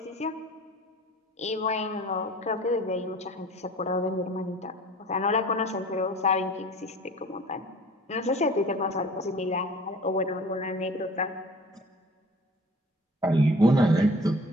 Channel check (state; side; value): normal; both; correlation 0.46